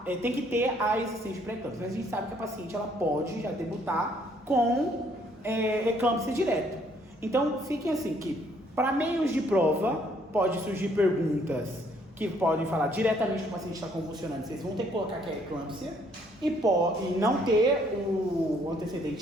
tem que ter a existência de pré-eclâmpsia. Mas a gente sabe que a paciente ela pode já debutar com eclâmpsia direto. Então, fiquem assim que para meios de prova pode surgir perguntas que podem falar diretamente que o paciente está convulsionando. Vocês vão ter que colocar que é eclâmpsia e não ter o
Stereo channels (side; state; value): both; normal; correlation 0.65